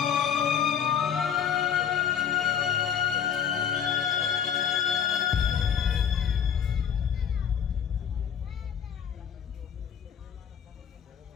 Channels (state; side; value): quieter; right; 8.3 dB